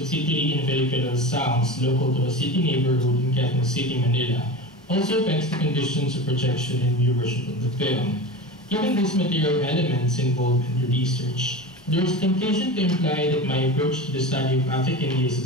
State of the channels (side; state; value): both; normal; correlation 0.28